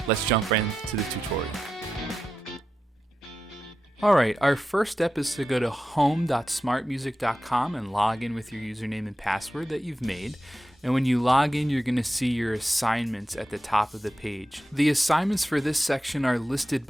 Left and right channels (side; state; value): both; normal; correlation 0.91